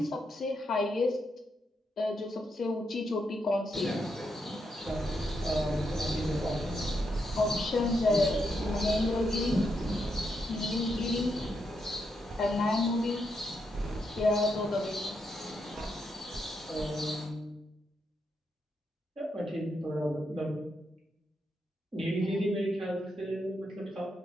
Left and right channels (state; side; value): normal; both; correlation 0.81